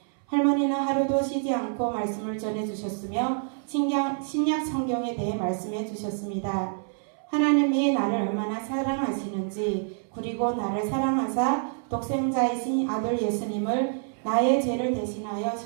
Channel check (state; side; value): silent; left; 60 dB below the other